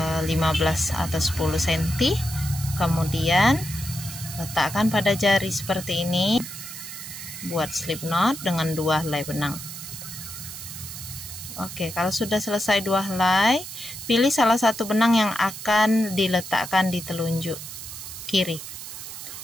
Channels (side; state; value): right; noise; hiss, 10 dB below the sound